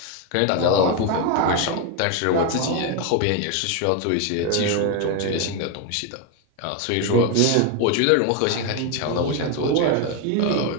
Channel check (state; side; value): different; both; correlation 0.01